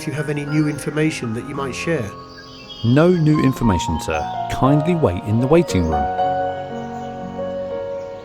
you have any new information that you might share. No new information, sir. Kindly wait in the waiting room.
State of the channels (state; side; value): identical; both; correlation 1.00